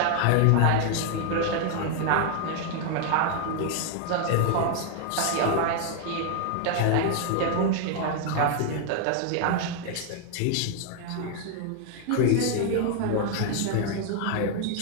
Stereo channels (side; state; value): both; different; correlation 0.00